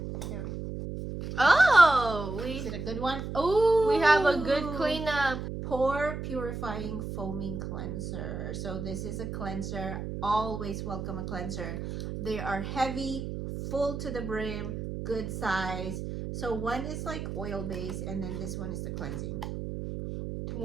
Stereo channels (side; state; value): right; noise; hum, 6 dB below the sound